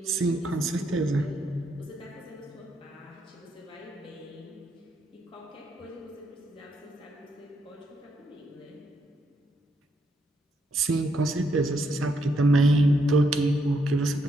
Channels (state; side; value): normal; both; correlation 0.76